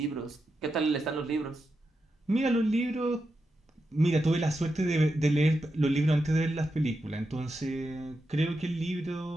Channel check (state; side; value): normal; both; correlation 0.87